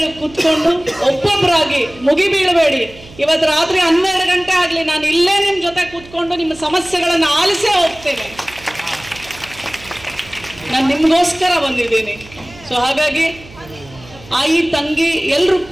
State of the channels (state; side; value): noise; right; hum, 21 dB below the sound